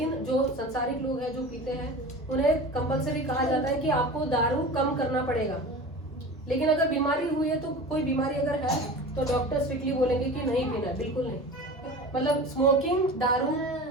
जो संसारिक लोग हैं जो पीते हैं उन्हें कंपलसरी कहा जाता है कि आपको दारू कम करना पड़ेगा। लेकिन अगर बीमारी हुई है, तो कोई बीमारी अगर है तो डॉक्टर स्ट्रिक्टली बोलेंगे कि नहीं पीना, बिल्कुल नहीं। मतलब स्मोकिंग, दारू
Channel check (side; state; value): both; normal; correlation 0.34